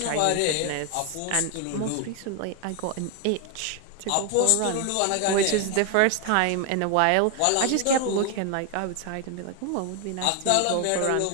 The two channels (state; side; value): different; both; correlation 0.01